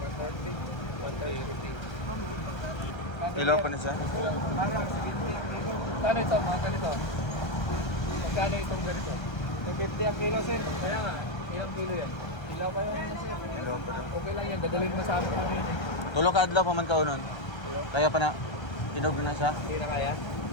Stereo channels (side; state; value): right; late; 1.3 ms